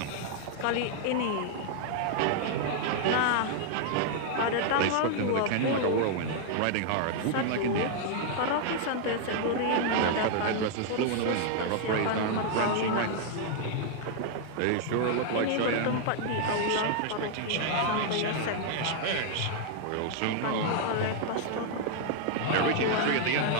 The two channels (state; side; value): different; both; correlation 0.00